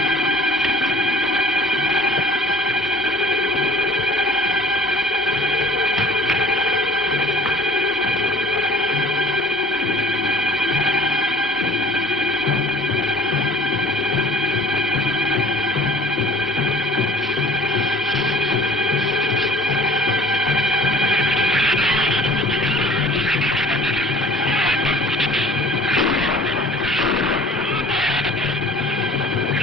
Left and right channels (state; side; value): normal; both; correlation 0.48